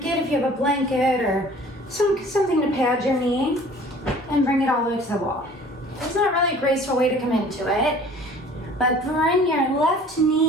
if you have a blanket or something to pad your knee, and bring it all the way to the wall. It's not really a graceful way to come into it, but bring your left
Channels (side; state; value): both; normal; correlation 0.49